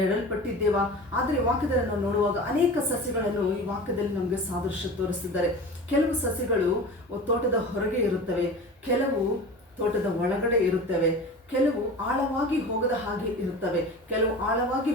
ಆದರೆ ವಾಕ್ಯದಲ್ಲಿ ನಾವು ನೋಡುವಾಗ ಅನೇಕ ಸಸಿಗಳನ್ನು ಈ ವಾಕ್ಯದಲ್ಲಿ ನಮಗೆ ಸಾದೃಶ್ಯ ತೋರಿಸ್ತಿದ್ದಾರೆ. ಕೆಲವು ಸಸಿಗಳು ತೋಟದ ಹೊರಗೆ ಇರುತ್ತವೆ, ಕೆಲವು ತೋಟದ ಒಳಗಡೆ ಇರುತ್ತವೆ, ಕೆಲವು ಆಳವಾಗಿ ಹೋಗದ ಹಾಗೆ ಇರುತ್ತವೆ, ಕೆಲವು ಆಳವಾಗಿ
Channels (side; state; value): both; normal; correlation 0.35